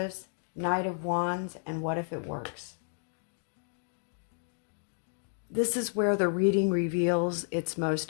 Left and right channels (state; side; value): silent; right; 57 dB below the other